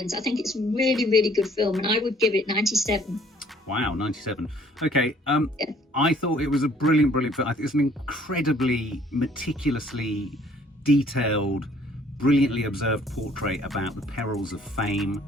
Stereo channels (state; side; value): normal; both; correlation 0.59